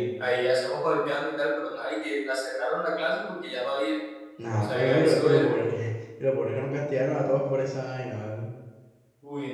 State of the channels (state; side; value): identical; both; correlation 1.00